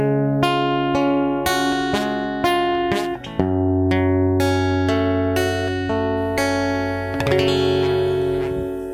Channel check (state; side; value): identical; both; correlation 1.00